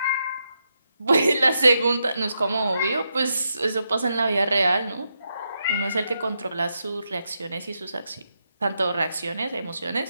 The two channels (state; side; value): inverted; both; correlation -0.83